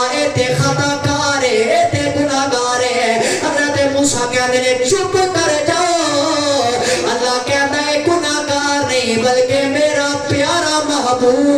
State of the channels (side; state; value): both; identical; correlation 1.00